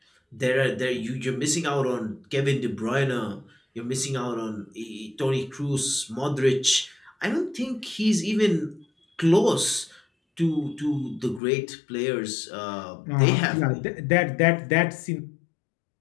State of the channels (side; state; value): right; drops out; at 11.4 s